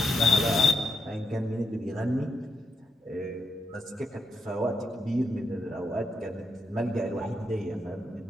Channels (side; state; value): both; normal; correlation 0.80